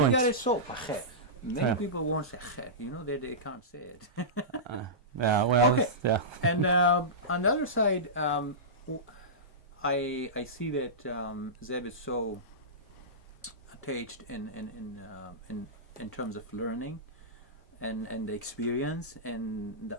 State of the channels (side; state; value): both; normal; correlation -0.17